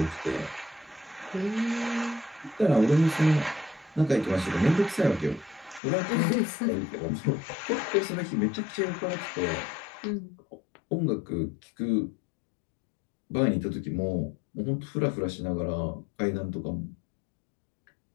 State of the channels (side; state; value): right; drops out; at 5.8 s